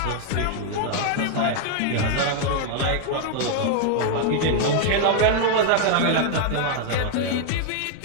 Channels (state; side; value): different; both; correlation 0.00